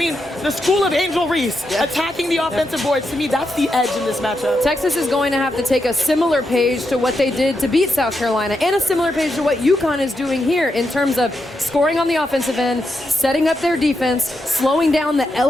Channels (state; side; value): normal; both; correlation 0.85